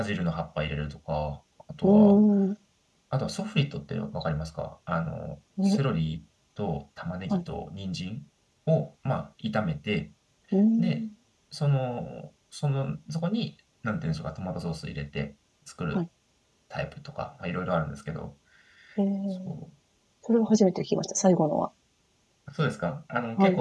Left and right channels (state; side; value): identical; both; correlation 1.00